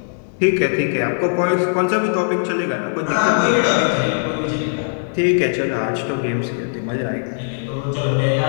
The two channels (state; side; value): silent; right; 62 dB below the other